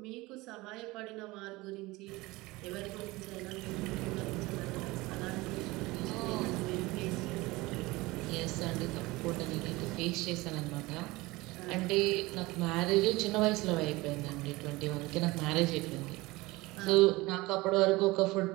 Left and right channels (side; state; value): left; quieter; 21.3 dB